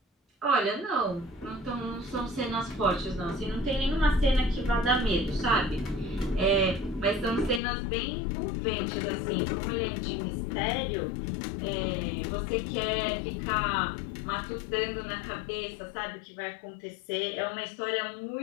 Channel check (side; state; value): right; drops out; at 7.6 s